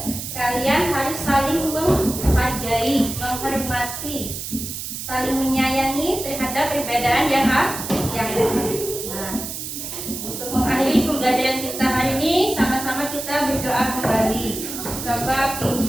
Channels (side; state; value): right; noise; hiss, 7 dB below the sound